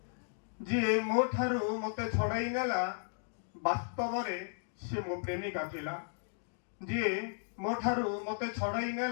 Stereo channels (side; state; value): right; silent; digital silence